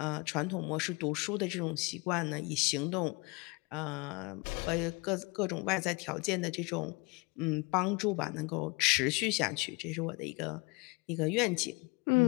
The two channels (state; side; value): quieter; right; 28.1 dB